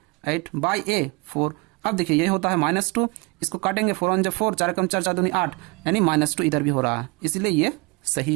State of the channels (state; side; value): quieter; left; 26.5 dB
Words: 8 बाई ए 4। अब देखिए ये होता है -2, इसको काटेंगे 4 1 4, 4 कम 4 4 दूनी 8, यानी -2 इधर भी हो रहा है, इसलिए ये